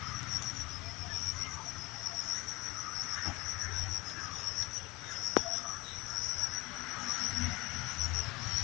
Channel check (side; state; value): right; quieter; 23.0 dB